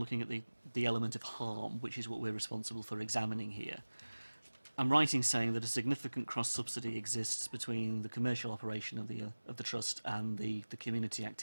at the element of harm, which is what we're responsible for examining here. I'm right in saying that a significant cross-subsidy exists between the commercial operation of the Trust and the community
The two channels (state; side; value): inverted; both; correlation -1.00